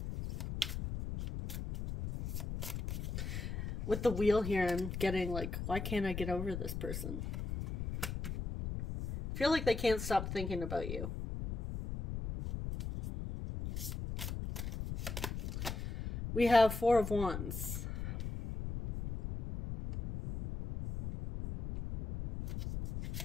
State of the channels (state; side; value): noise; left; rumble, 5 dB below the sound